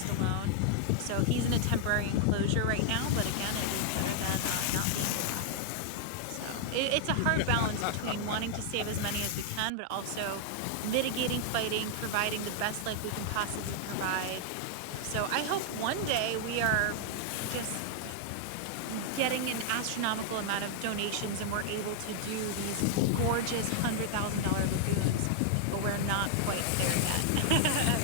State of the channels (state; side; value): different; both; correlation 0.00